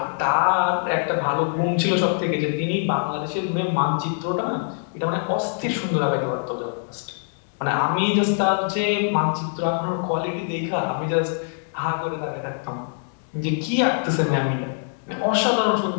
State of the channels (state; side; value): silent; right; digital silence